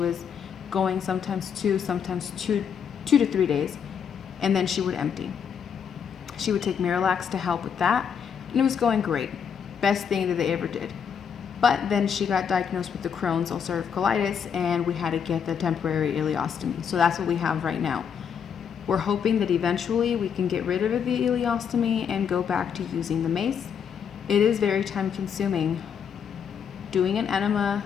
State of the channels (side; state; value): right; quieter; 7.4 dB